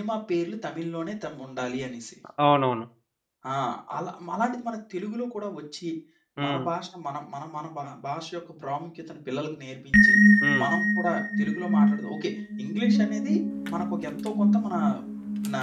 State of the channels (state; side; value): identical; both; correlation 1.00